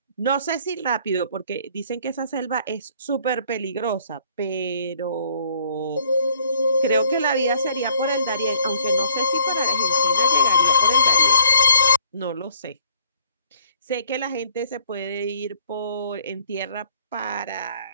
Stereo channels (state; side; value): inverted; both; correlation -0.59